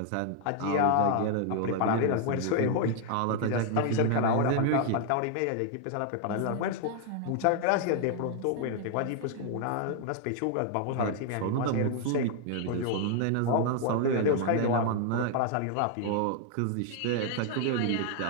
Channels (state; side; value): different; both; correlation 0.00